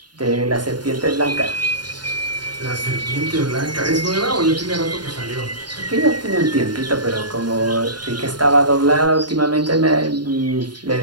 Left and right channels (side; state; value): left; late; 0.70 ms